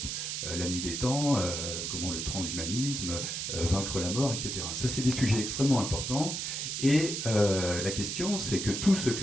La nuit des temps, comment le transhumanisme, vaincre la mort, etc. Ça, c'est des sujets extrêmement importants. Et la question, c'est que tout ce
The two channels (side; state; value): right; noise; hiss, 3 dB below the sound